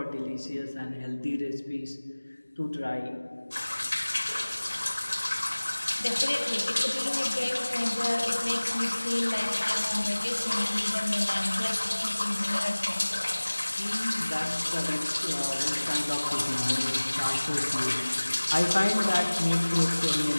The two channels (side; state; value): both; inverted; correlation -1.00